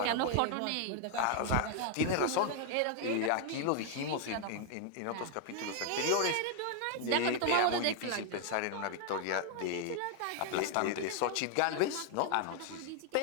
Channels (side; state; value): both; different; correlation 0.00